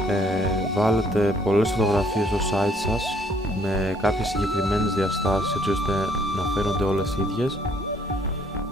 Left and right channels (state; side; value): normal; both; correlation 0.64